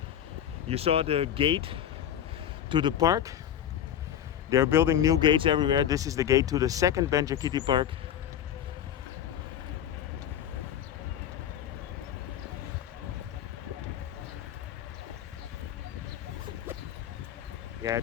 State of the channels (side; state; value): right; quieter; 10.0 dB